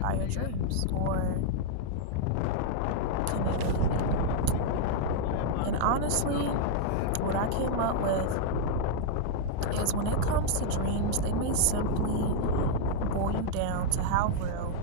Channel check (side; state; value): both; different; correlation 0.00